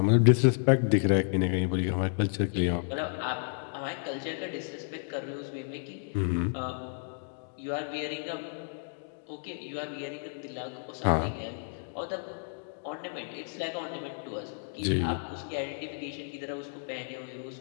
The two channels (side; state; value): right; silent; digital silence